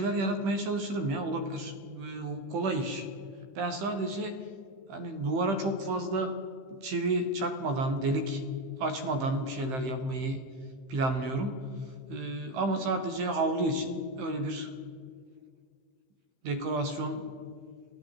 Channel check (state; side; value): late; left; 15 ms